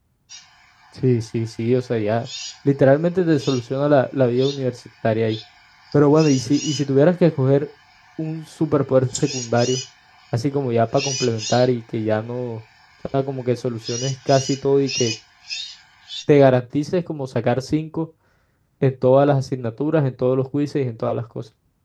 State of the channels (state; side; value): identical; both; correlation 1.00